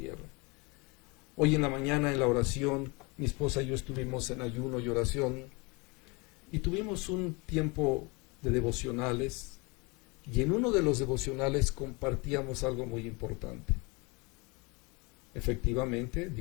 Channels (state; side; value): quieter; right; 28.0 dB